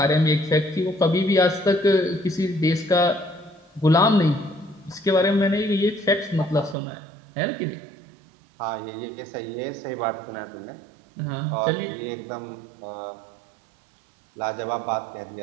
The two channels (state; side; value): drops out; left; at 6.8 s